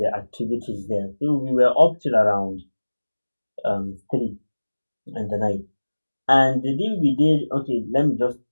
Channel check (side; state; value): both; inverted; correlation -1.00